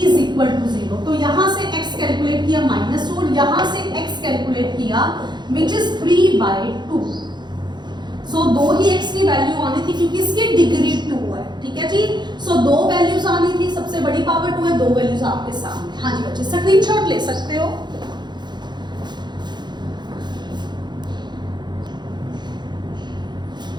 विच इज 3/2। सो दो ही x की वैल्यू आनी थी क्योंकि इसकी डिग्री 2 है, ठीक है जी। सो दो वैल्यूज आनी थी, सबसे बड़ी पावर 2 है, दो वैल्यूज आपके सामने। हाँ जी बच्चे, स्क्रीनशॉट ले सकते हो।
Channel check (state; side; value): late; left; 0.21 ms